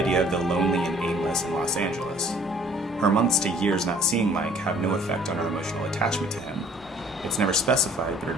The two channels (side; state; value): both; normal; correlation 0.55